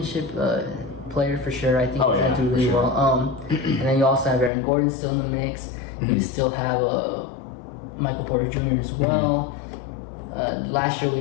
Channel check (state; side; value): drops out; right; at 4.5 s